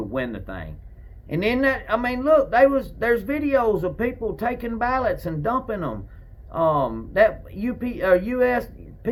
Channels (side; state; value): both; identical; correlation 1.00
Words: win the thing. And then look, there's videos of people taking ballots and dumping them. That USPS